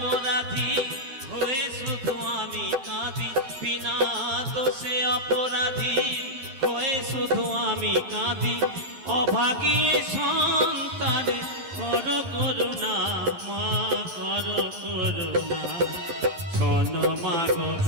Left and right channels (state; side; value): late; left; 12 ms